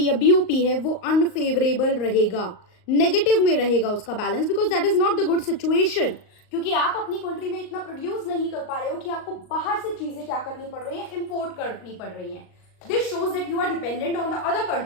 या बीओपी है वो अनफेवरेबल रहेगा, नेगेटिव में रहेगा उसका balance, because that is not the good situation. क्योंकि आप अपनी कंट्री में इतना प्रोड्यूस नहीं कर पा रहे हो कि आपको बाहर से चीजें क्या करनी पड़ रही है, इंपोर्ट करनी पड़ रही है। This shows that you are dependent on the other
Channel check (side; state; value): right; late; 38 ms